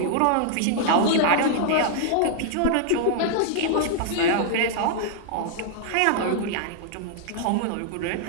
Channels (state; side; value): different; both; correlation -0.01